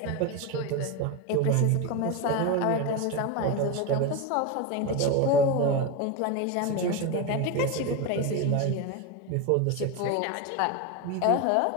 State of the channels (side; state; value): both; different; correlation 0.03